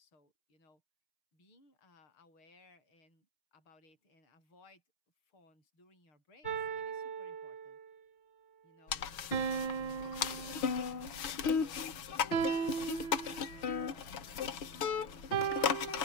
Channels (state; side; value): late; right; 6.3 ms